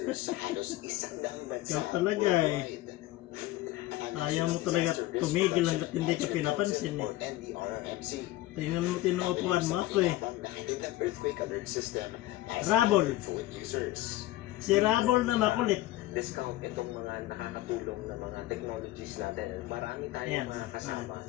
sa halos 100 bansa. Ikaw talaga eh. Ayaw mo talaga tumigil hanggat hindi ka pinapansin eh. Tingnan mo, tinuupuan mo ako eh. Rabol. Si Rabol na makulit. Discount itong mga nakakatulong na mga technologies natin. Marami tayong mga kasama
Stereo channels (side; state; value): right; quieter; 16.9 dB